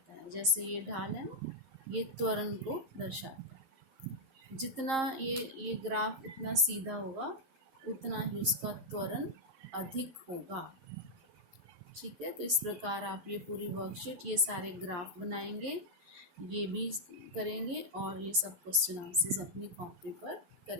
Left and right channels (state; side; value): late; left; 11 ms